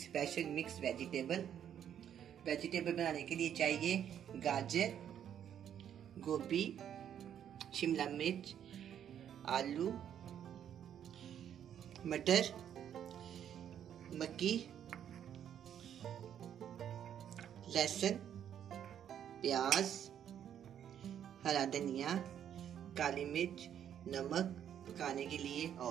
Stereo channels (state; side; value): quieter; left; 9.5 dB